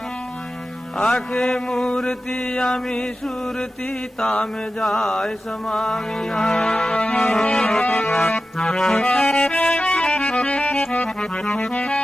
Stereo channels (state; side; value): normal; both; correlation 0.93